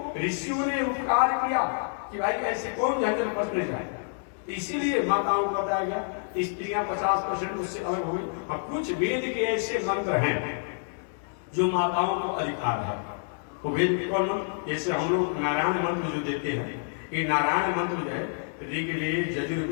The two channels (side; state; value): right; silent; digital silence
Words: ऋषियों ने उपकार किया कि भाई ऐसे कौन झंझट बचने जाए। इसीलिए माताओं को बताया गया, स्त्रियां 50% उससे अलग हो गई। अब कुछ वेद के ऐसे मंत्र हैं जो माताओं को अधिकार है। वो वेद कौन? जैसे हम लोग नारायण मंत्र जो देते हैं, ये नारायण मंत्र जो है ऋग्वेद,